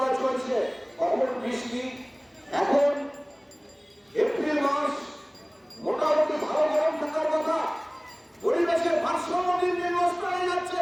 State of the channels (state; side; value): identical; both; correlation 1.00